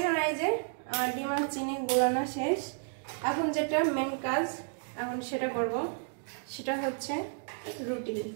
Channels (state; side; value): silent; left; 57 dB below the other